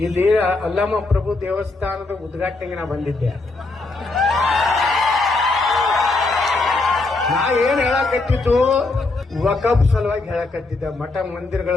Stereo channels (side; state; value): right; quieter; 3.4 dB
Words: ಇಲ್ಲಿ ಅಲ್ಲಮ್ಮ ಪ್ರಭು ದೇವಸ್ಥಾನದ ಉದ್ಘಾಟನೆಗೆ ನಾ ಬಂದಿದ್ದೆ. ನಾ ಏನ್ ಹೇಳಕತ್ತಿದ್ದು, ವಕಫ್ ಸಲುವಾಗಿ ಹೇಳಕತ್ತಿದ್ದೆ, ಮಠ ಮಂದಿರಗಳ